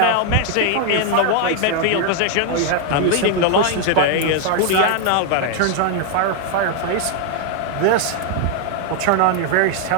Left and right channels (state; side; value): different; both; correlation 0.00